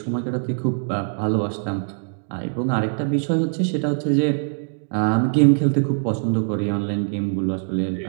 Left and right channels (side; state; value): left; silent; digital silence